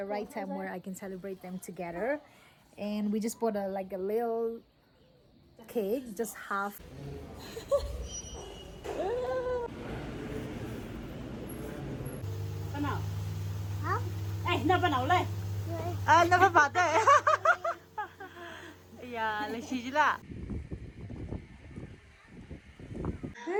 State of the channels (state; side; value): identical; both; correlation 1.00